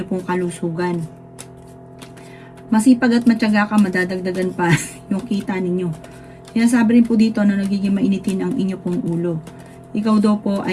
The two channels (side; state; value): both; identical; correlation 1.00